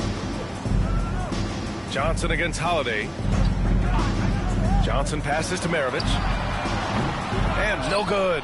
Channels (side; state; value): both; identical; correlation 1.00